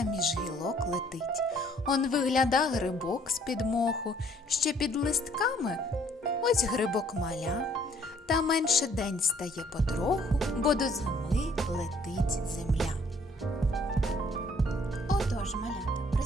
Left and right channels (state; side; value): normal; both; correlation 0.61